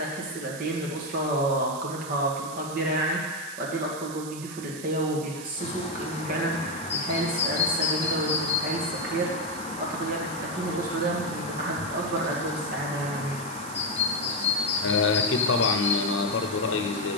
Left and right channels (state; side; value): noise; right; hiss, 12 dB below the sound